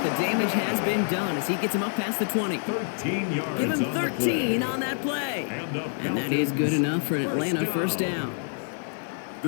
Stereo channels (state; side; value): silent; right; digital silence